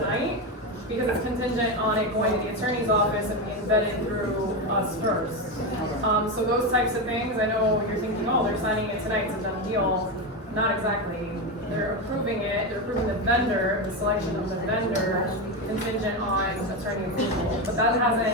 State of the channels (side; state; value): both; normal; correlation 0.14